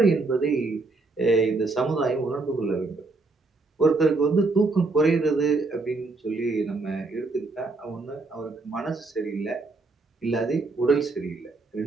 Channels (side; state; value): left; quieter; 3.5 dB